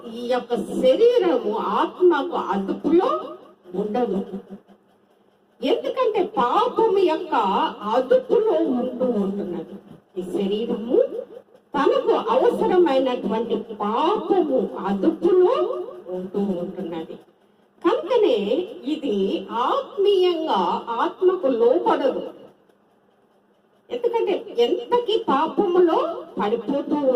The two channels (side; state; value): both; identical; correlation 1.00